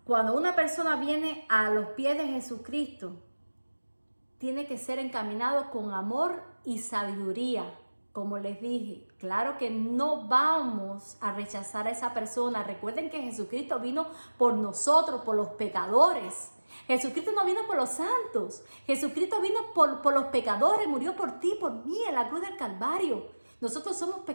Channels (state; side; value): inverted; both; correlation -1.00